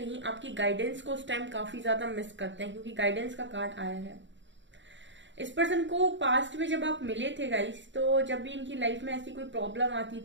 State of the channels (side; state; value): left; late; 0.54 ms